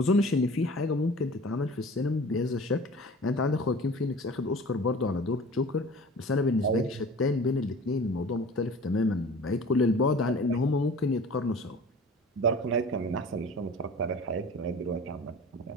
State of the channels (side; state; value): both; normal; correlation 0.42